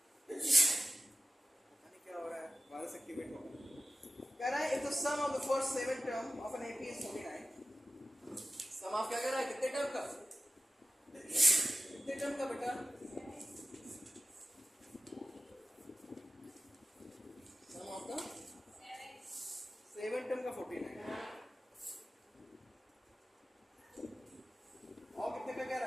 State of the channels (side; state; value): both; normal; correlation 0.94